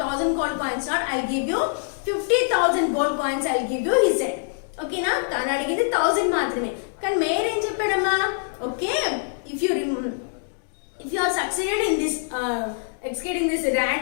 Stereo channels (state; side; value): silent; right; digital silence